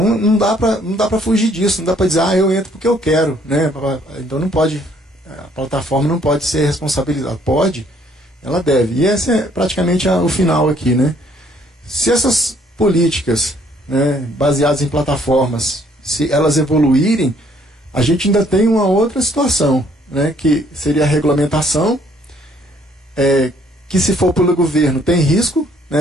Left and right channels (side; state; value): both; normal; correlation 0.64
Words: não dá para fugir disso, não dá para dizer, eu entro porque eu quero. Né? Então não pode, a plataforma não pode ser responsabilizada. Pode, ela deve. E esse é praticamente o final aqui. Né? Se essas políticas, né, baseadas em plataformas, se elas evoluírem, a gente ainda tem uma outra situação, né, que seria a regulamentação, que se for pelo governo tem risco,